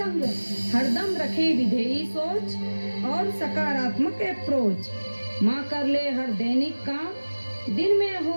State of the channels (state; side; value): inverted; both; correlation -1.00